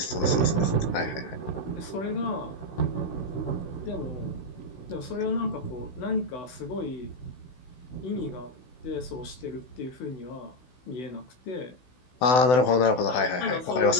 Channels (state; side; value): late; right; 16 ms